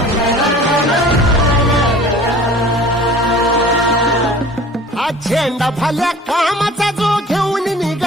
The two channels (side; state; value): both; normal; correlation 0.45